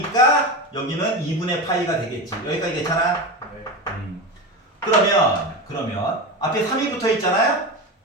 여기는 2분의 파이가 되겠지. 여기까지 괜찮아? 네. 그러면 앞에 3이 붙어 있잖아요?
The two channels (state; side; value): normal; both; correlation 0.21